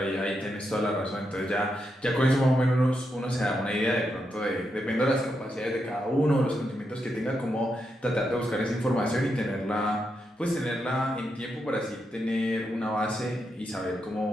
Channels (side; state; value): both; normal; correlation 0.83